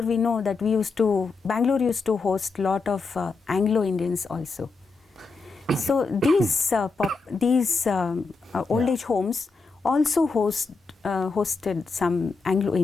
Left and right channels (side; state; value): right; quieter; 4.2 dB